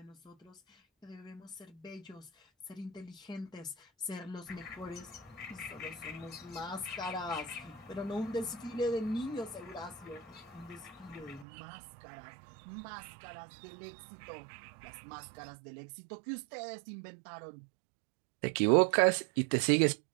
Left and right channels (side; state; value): left; drops out; at 11.5 s